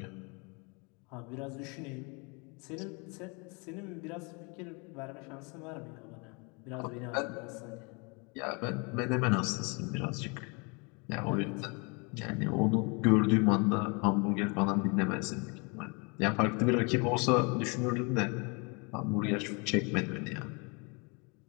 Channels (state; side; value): quieter; right; 31.4 dB